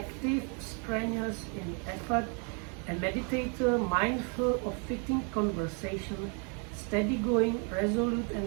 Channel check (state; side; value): quieter; left; 37.9 dB